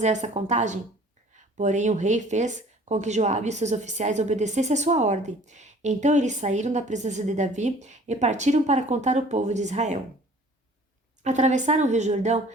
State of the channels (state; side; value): normal; both; correlation 0.51